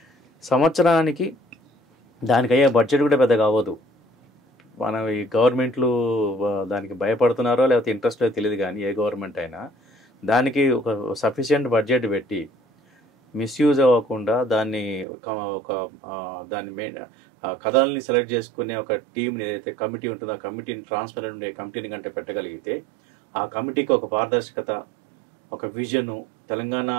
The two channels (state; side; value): drops out; left; at 15.1 s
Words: సంవత్సరానికి దానికి అయ్యే బడ్జెట్ కూడా పెద్దగా అవ్వదు. మనం ఈ గవర్నమెంట్లు దానికి భయపడుతున్నారో లేకపోతే ఇంట్రెస్ట్ తెలియదు, కానీ ఏ గవర్నమెంట్ అయినా దానికి ఒక సఫిషియెంట్ బడ్జెట్ పెట్టి మిస్యూజ్ అవ్వకుండా దాన్ని కథల్ని సెలెక్ట్ చేసుకునే ఒక టీంని ఏదైతే కమిటీ ఉంటుందో ఆ కమిటీని ట్రాన్స్పరెంట్ ఉండే కమిటీని కంటే పెట్టగలిగితే ఆ కమిటీకి ఒక పారదర్శకత, ఒక విజను, తెలంగాణ